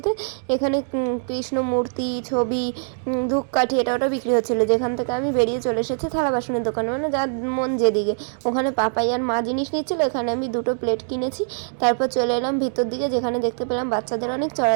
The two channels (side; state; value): left; silent; digital silence